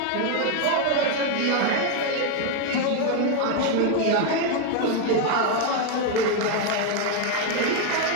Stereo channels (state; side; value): different; both; correlation 0.01